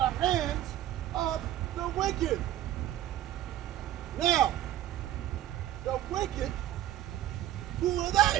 hands of the wicked. Now, the wicked, who are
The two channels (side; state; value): left; quieter; 12.8 dB